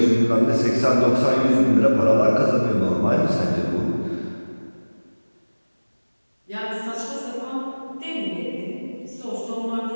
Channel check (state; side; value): inverted; both; correlation -1.00